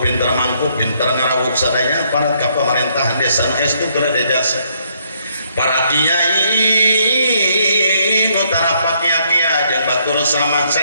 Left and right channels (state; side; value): inverted; both; correlation -0.71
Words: pinter mangku pinter ngarawuk sadaya parat ka pemerintahan desa nu estu berada jasa para kiai nu tarapak kiai jeung batur selamat